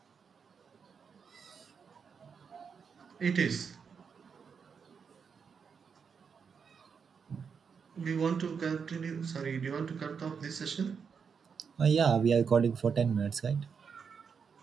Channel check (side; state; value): left; quieter; 6.2 dB